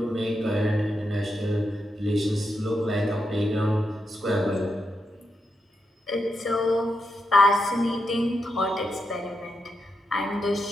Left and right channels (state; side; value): normal; both; correlation 0.84